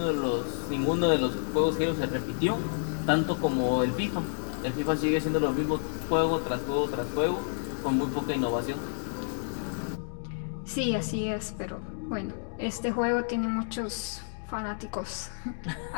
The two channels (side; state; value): right; silent; digital silence